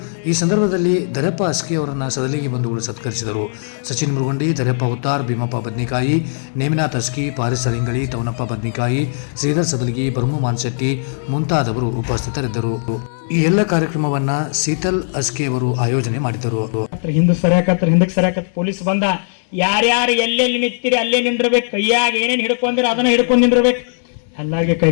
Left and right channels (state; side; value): silent; right; 67 dB below the other